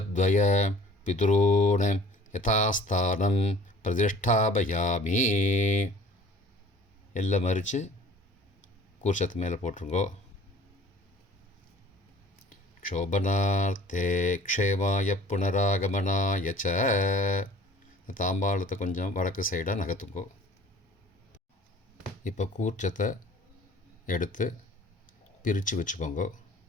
पितॄन् यथास्थानं प्रतिष्ठापयामि. எல்லாம் மறித்து கூர்ச்சத்து மேலே போட்டுருங்கோ. க்ஷோபனார்த்தே க்ஷேமாய புனராகமனாய ச. தாம்பாளத்தை கொஞ்சம் வடக்கு சைடாக நகர்த்துங்கோ. இப்போ கூர்ச்சத்தை எடுத்து பிரித்து வச்சுக்கோங்க.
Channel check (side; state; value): both; normal; correlation 0.49